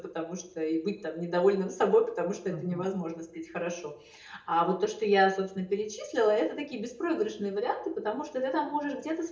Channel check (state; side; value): identical; both; correlation 1.00